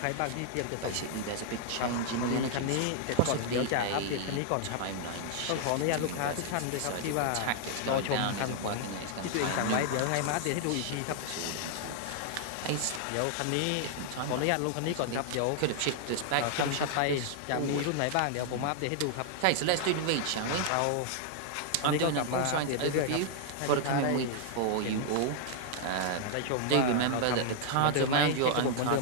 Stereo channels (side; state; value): both; different; correlation 0.00